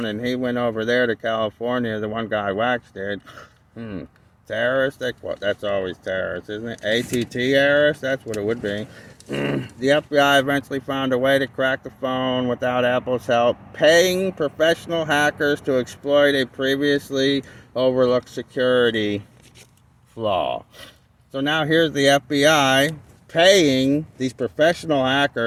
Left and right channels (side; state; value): both; identical; correlation 1.00